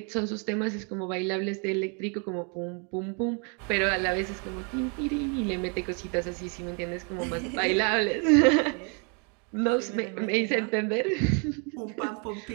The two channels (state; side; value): quieter; left; 36.5 dB